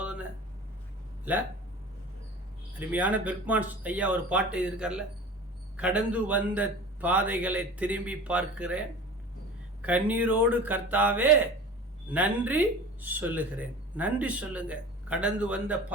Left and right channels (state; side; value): normal; both; correlation 0.38